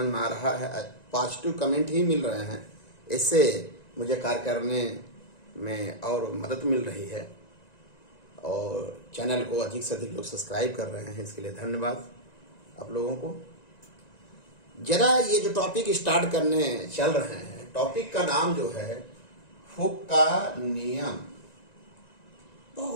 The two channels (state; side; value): late; right; 1.9 ms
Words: में आ रहा है, पॉजिटिव कमेंट ही मिल रहे हैं। इससे मुझे कार्य करने में और मदद मिल रही है और चैनल को अधिक से अधिक लोग सब्सक्राइब कर रहे हैं। इसके लिए धन्यवाद आप लोगों को। जरा ये जो टॉपिक स्टार्ट करने चल रहे हैं, टॉपिक का नाम जो है हुक का नियम।